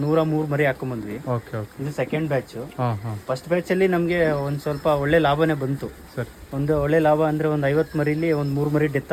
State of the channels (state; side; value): identical; both; correlation 1.00